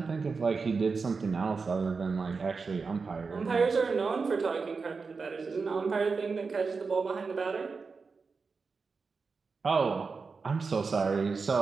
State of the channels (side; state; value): left; quieter; 4.7 dB